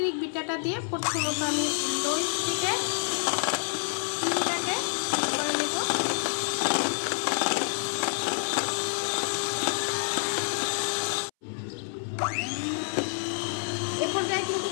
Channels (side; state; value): right; silent; 59 dB below the other